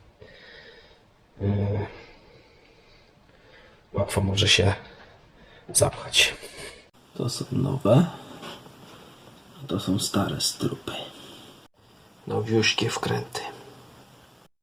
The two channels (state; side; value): identical; both; correlation 1.00